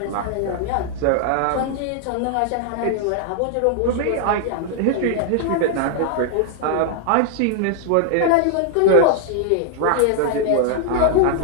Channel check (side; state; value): both; different; correlation 0.00